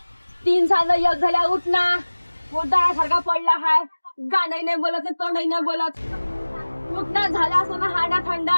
3 साल एक झाल्या. उठ ना. सारखा पडला हाय. गाणंही नाही बोलत तोंडही नाही बोलत. उठ ना. झाला असं ना हाडा थंडा.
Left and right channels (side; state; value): both; inverted; correlation -1.00